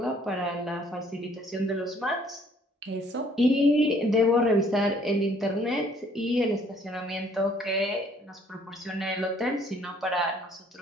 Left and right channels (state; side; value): normal; both; correlation 0.61